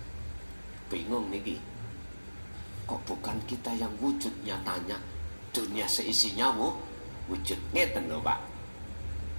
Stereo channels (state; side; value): inverted; both; correlation -1.00